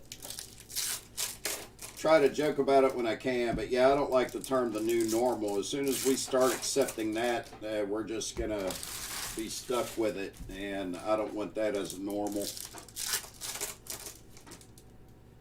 try to joke about it when I can. But yeah, I don't like the term the new normal. As soon as we start accepting that, we're just going to be stuck with it. And I don't want that as normal.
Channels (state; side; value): identical; both; correlation 1.00